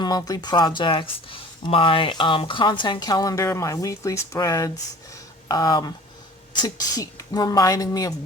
projects, my content calendar, my weekly spreads, to keep reminding me of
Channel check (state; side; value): normal; both; correlation 0.45